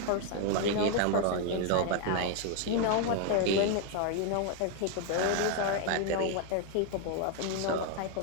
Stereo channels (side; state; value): both; different; correlation 0.00